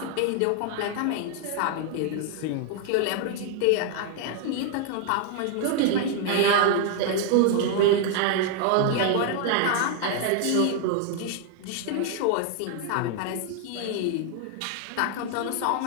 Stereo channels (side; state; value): both; different; correlation 0.00